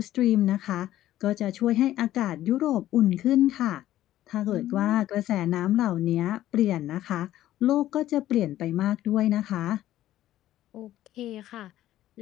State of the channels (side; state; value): right; quieter; 13.6 dB